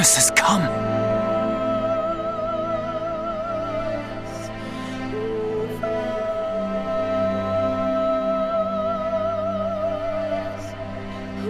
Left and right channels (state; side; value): identical; both; correlation 1.00